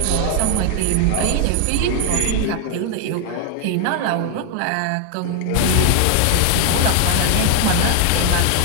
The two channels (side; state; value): both; different; correlation 0.00